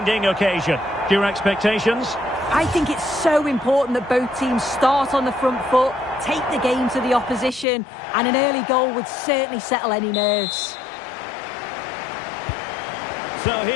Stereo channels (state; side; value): drops out; right; at 7.7 s